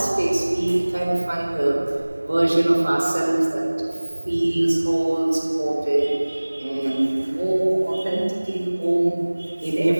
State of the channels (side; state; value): both; inverted; correlation -1.00